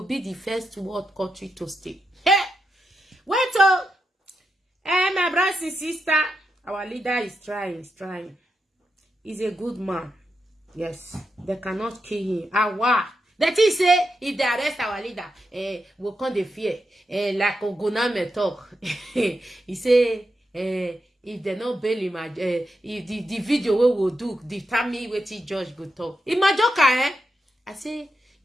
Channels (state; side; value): normal; both; correlation 0.86